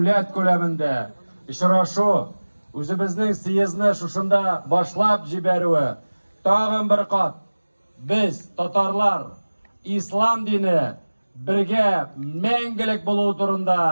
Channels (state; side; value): inverted; both; correlation -1.00